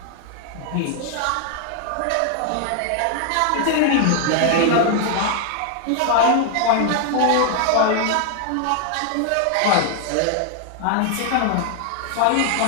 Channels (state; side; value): different; both; correlation 0.00